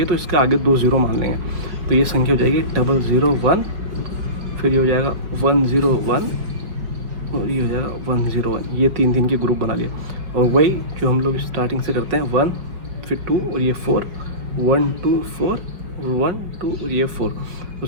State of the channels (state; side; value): late; left; 5.3 ms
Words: है तो इसके आगे 2 0 मान लेंगे। तो ये संख्या हो जाएगी 001, फिर ये हो जाएगा 101, और ये हो जाएगा 101। ये 3 के ग्रुप बना लिए। और वही जो हम लोग स्टार्टिंग से करते हैं 1, फिर 2, और ये 4, 1 2 4, 1 2, और ये 4। तो